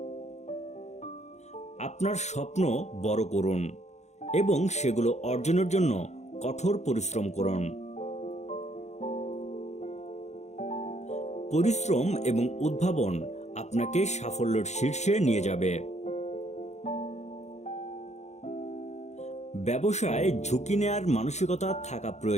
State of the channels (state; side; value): late; right; 0.33 ms